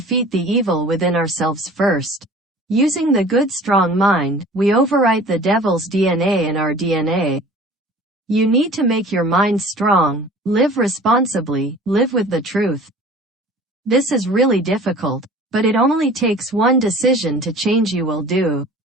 the evil within ourselves first. Using the good strong mind, we overwrite the devil's DNA in our DNA. You need to make your mind strong, live responsibly, live with the truth. This is really difficult, but it only takes one decision to change. You will do.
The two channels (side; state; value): both; normal; correlation 0.45